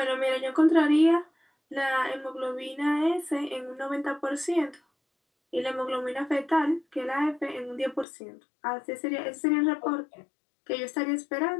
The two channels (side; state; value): right; drops out; at 8.1 s